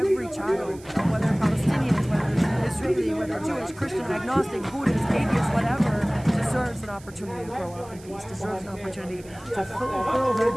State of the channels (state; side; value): noise; right; hiss, 23 dB below the sound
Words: child, whether Palestinian, whether Israeli, whether Jewish, Christian, agnostic, Buddhist, atheist, whatever, deserves an opportunity to grow up in peace, deserves an opportunity to fulfill their